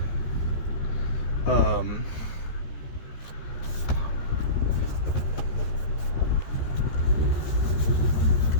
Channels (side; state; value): right; late; 14 ms